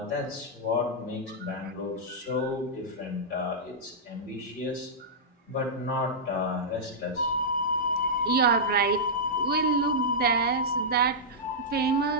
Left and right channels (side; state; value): both; normal; correlation -0.10